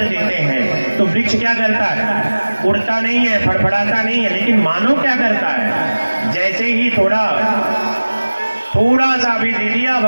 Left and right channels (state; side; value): inverted; both; correlation -1.00